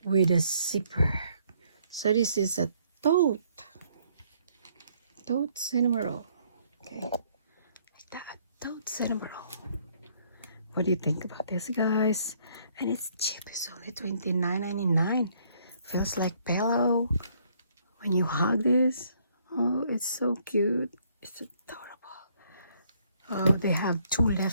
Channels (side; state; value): both; inverted; correlation -0.67